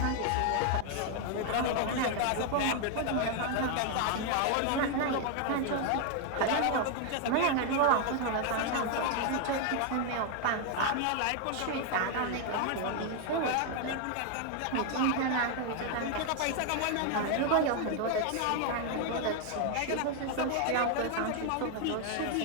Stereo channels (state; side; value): different; both; correlation 0.00